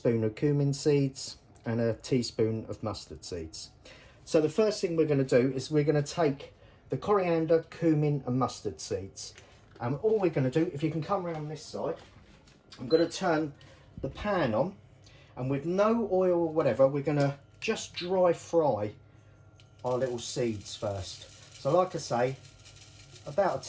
cumin seeds, and a teaspoon of mustard seeds. So the first thing we're going to do is we're going to take the coriander, cumin and mustard seeds. And all we're going to do, if you can come around this side, I'm going to turn the pan on, and with no oil or whatever, we're going to just dry fry our little seeds first. So like I say, about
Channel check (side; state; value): both; identical; correlation 1.00